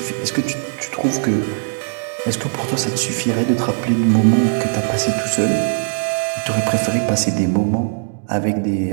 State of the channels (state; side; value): silent; left; 62 dB below the other